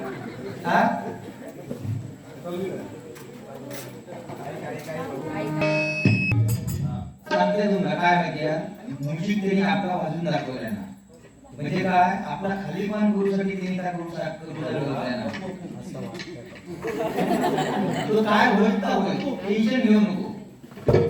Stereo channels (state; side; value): identical; both; correlation 1.00